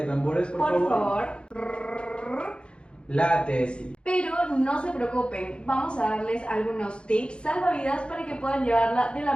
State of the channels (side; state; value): right; late; 0.056 ms